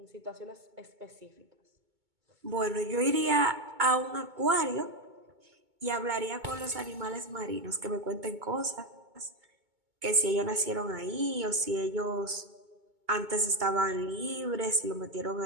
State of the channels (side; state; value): left; late; 2.2 ms